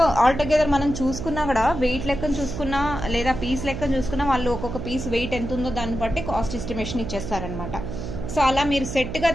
ఆల్టుగెదర్ మనం చూసుకున్నా కూడా వెయిట్ లెక్కన చూసుకున్నా లేదా పీస్ లెక్కన చూసుకున్నా వాళ్ళు ఒక్కొక్క పీస్ వెయిట్ ఎంత ఉందో దాన్ని బట్టి కాస్ట్ ఎస్టిమేషన్ ఇచ్చేస్తారనమాట. సో అలా మీరు సెట్గా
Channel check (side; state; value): right; noise; hum, 7 dB below the sound